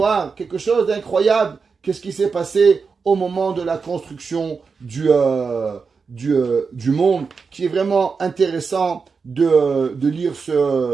quelque chose d'incroyable. Qu'est-ce qui s'est passé au moment de la construction du monde, qui est vraiment intéressant de lire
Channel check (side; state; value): left; quieter; 5.1 dB